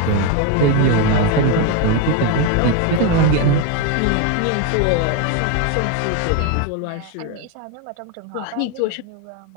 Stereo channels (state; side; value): different; both; correlation 0.02